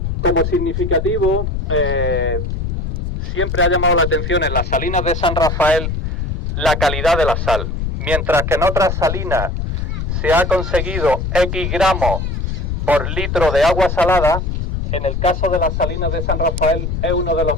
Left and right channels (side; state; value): left; noise; rumble, 2 dB below the sound